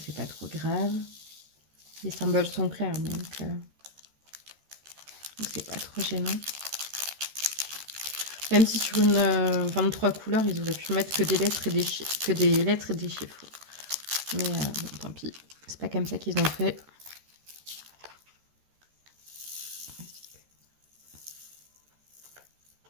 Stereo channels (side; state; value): left; late; 13 ms